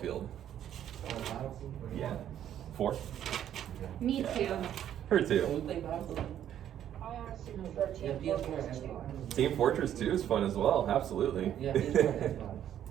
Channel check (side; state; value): left; quieter; 10.6 dB